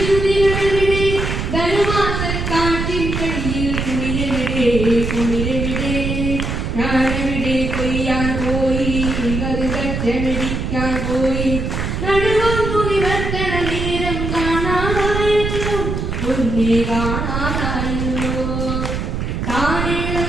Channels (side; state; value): right; noise; rumble, 2 dB below the sound